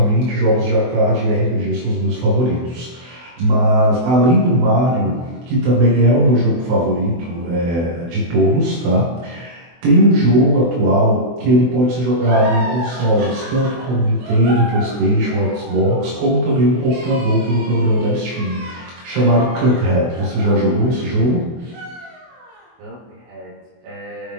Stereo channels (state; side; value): late; left; 24 ms